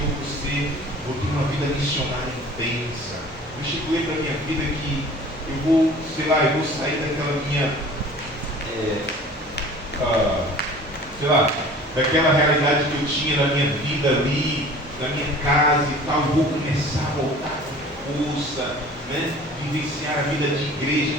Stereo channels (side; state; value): both; normal; correlation 0.45